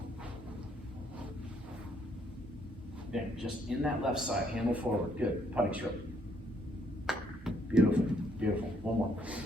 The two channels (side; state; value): both; normal; correlation 0.69